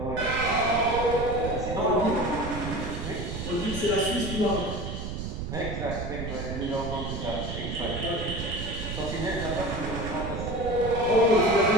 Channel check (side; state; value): right; noise; rumble, 6 dB below the sound